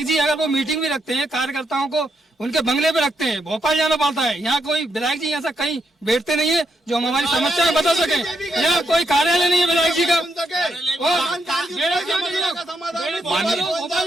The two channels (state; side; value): normal; both; correlation 0.80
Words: जी अगर वो मीटिंग भी रखते हैं कार्यकर्ताओं को उनके बंगले पे रखते हैं, भोपाल जाना पड़ता है। यहाँ कोई विधायक जी ऐसा कहीं बैठते नहीं है जो हम हमारी समस्याएं बता सके। यहाँ कोई कार्यालय नहीं है विधायक जी का। भोपाल